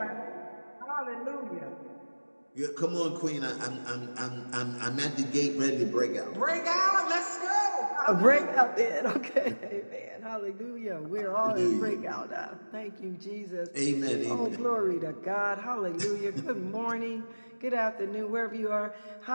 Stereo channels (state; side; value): inverted; both; correlation -1.00